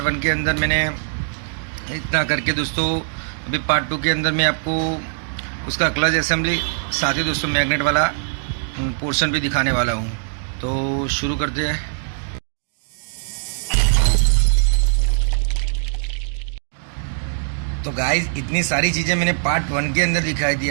1 के अंदर मैंने इतना करके दोस्तों, अभी पार्ट 2 के अंदर मैं आपको उसका क्लच असेंबली साथ ही दोस्तों मैग्नेट वाला पोर्शन भी दिखाने वाला हूँ। तो शुरू करते हैं। तो गाइस इतनी सारी चीज़ें मैंने पार्ट 1 के अंदर दिखाई थी।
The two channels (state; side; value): silent; left; digital silence